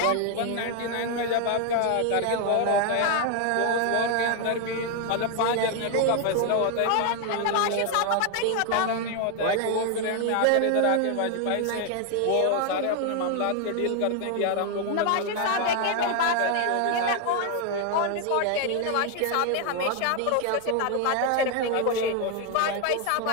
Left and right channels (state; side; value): different; both; correlation 0.01